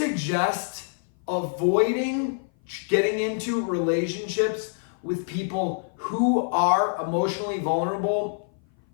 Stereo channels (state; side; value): silent; right; 57 dB below the other